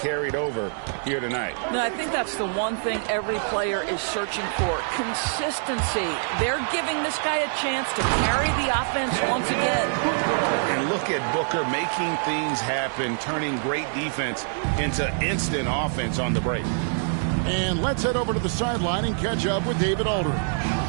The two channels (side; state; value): left; silent; digital silence